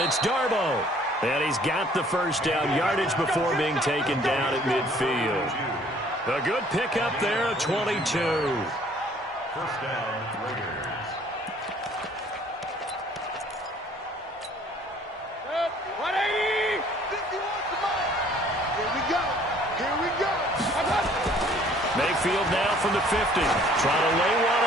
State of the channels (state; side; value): normal; both; correlation 0.57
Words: It's Darbo. And he's got the first down yardage before being taken down at midfield. A good pickup there at 22. First down, Raiders. Mayfield now from the 50. Trying to lay one